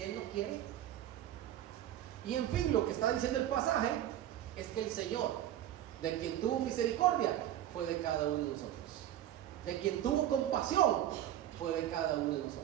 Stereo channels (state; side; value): quieter; left; 12.2 dB